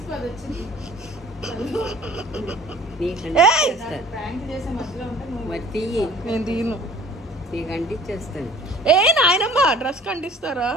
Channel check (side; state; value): both; normal; correlation 0.49